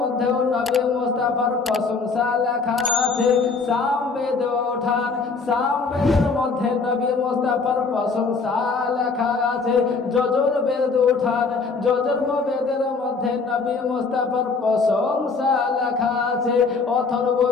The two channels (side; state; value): right; quieter; 4.5 dB